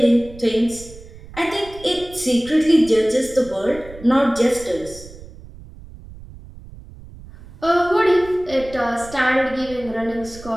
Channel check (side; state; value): right; noise; rumble, 18 dB below the sound